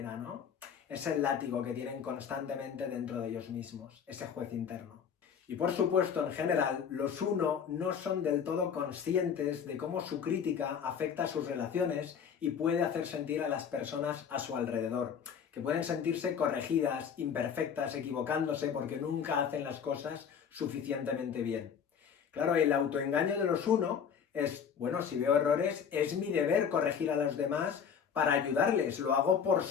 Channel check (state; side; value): quieter; right; 7.3 dB